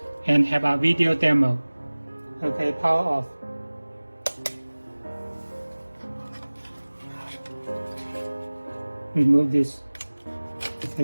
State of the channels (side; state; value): both; inverted; correlation -1.00